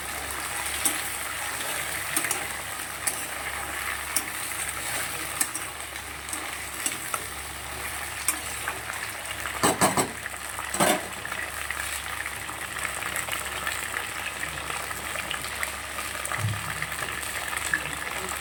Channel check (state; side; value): identical; both; correlation 1.00